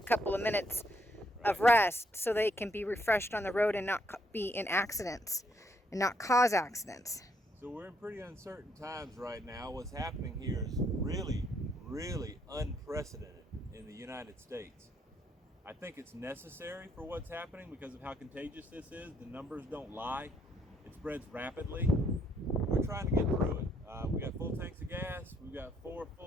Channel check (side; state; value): both; normal; correlation 0.72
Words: of minutes of rest so they can be refreshed on the road and not be in accidents and not cause accidents? So we're in pretty uncertain times right now. What's happening here is really, really unprecedented in the United States. I think it's necessary for what's happening because of how contagious this is. The numbers don't lie. It spreads rapidly. We're trying to get through it. We got full tanks of gas. We've got 4